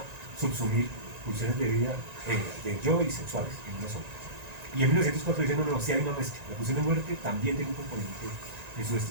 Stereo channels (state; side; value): late; left; 1.9 ms